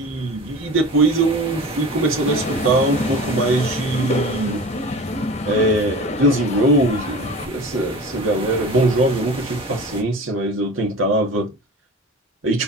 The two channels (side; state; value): both; normal; correlation 0.36